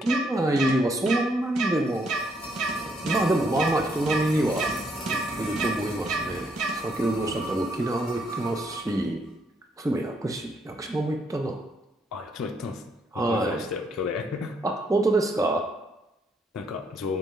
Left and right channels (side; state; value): both; normal; correlation 0.73